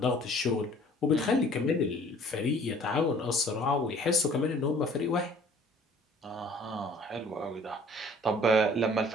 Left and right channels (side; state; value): both; normal; correlation 0.53